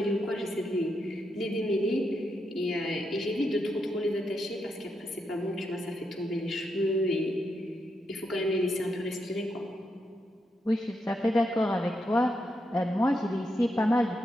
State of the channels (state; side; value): normal; both; correlation 0.83